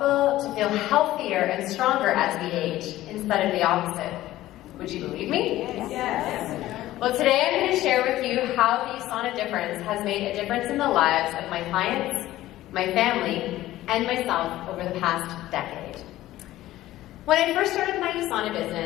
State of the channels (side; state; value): right; quieter; 15.3 dB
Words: to feel healthier and stronger as we age instead of the opposite? Would you believe me? Yes. Well, today I'm going to share with you how the USANA Difference has made a difference in the lives of my clients, my family, and myself over the past decade. When I first started my USANA